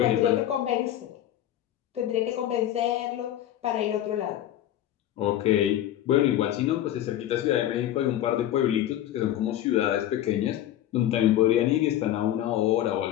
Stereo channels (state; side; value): quieter; right; 12.3 dB